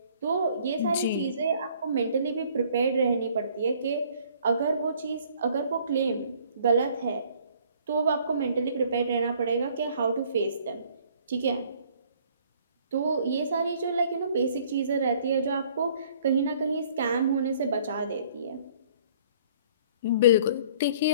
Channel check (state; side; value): inverted; both; correlation -0.58